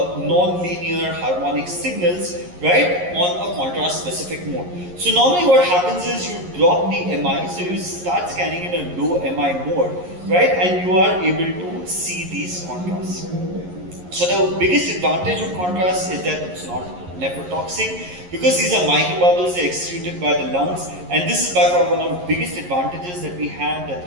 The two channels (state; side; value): late; left; 11 ms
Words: harmonic signals, right, on a contrast specific mode. So normally what happens is you drop the MI, so you start scanning in a low MI mode, right, and you are able to see these contrasts. So the biggest advantage of contrast is that it's not nephrotoxic, because these are microbubbles, they're excreted by the lungs, and this is by far one of the biggest advantages that we have, that